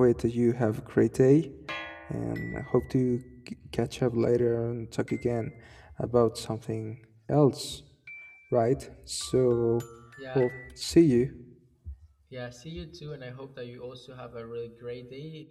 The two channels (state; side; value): identical; both; correlation 1.00